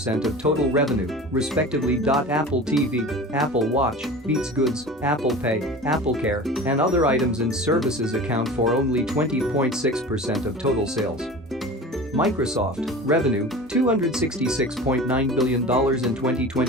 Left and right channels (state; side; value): normal; both; correlation 0.36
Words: of total revenue, respectively. Apple TV, Apple Watch, Beats Goods, Apple Pay, Apple Care, and other items and services account for only 20.6% of total sales. Microsoft, revenue, $266.9 billion in